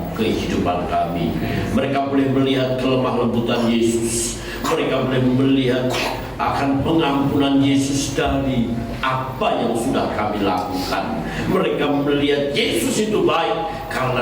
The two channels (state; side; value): identical; both; correlation 1.00